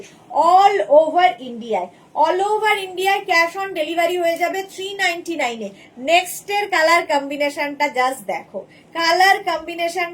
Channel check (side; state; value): both; identical; correlation 1.00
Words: all over ইন্ডিয়ায়। অল ওভার ইন্ডিয়ায় ক্যাশ অন ডেলিভারি হয়ে যাবে 399 এ। নেক্সট এর কালার কম্বিনেশনটা জাস্ট দেখো, কালার